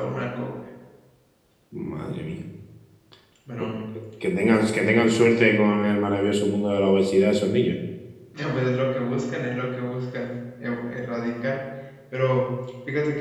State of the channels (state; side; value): identical; both; correlation 1.00